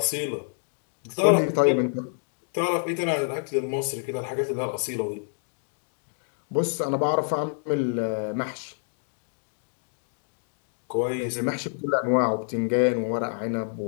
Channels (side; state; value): right; silent; digital silence